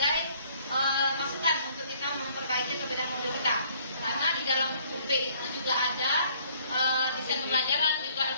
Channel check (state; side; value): inverted; both; correlation -0.61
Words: masukan untuk kita memperbaiki atau beda modul kita. Karena di dalam UP itu juga ada desain pembelajaran, juga